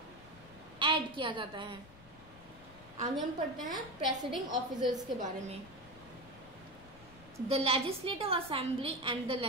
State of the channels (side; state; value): left; noise; rumble, 21 dB below the sound